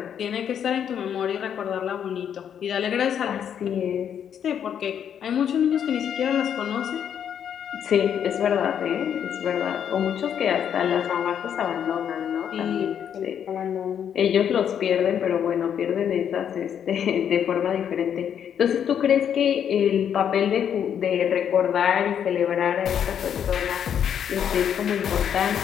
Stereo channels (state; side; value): quieter; right; 8.7 dB